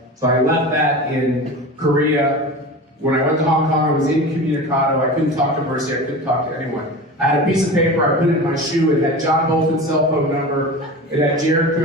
So I left that in Korea. When I went to Hong Kong, I was incommunicado. I couldn't talk to Mercy. I couldn't talk to anyone. I had a piece of paper. I put it in my shoe. It had John Bolton's cell phone number. It had Jared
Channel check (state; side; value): normal; both; correlation 0.32